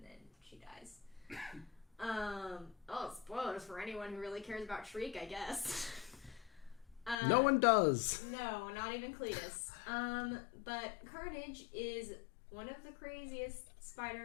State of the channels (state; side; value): drops out; right; at 7.2 s